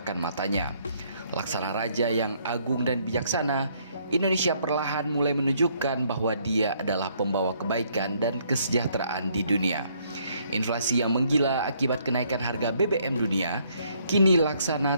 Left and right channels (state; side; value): inverted; both; correlation -0.68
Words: matanya. Laksana raja yang agung dan bijaksana, Indonesia perlahan mulai menunjukkan bahwa dia adalah pembawa kebaikan dan kesejahteraan di dunia. Inflasi yang menggila akibat kenaikan harga BBM dunia, kini